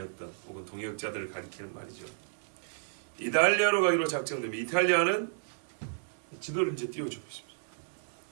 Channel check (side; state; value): left; silent; digital silence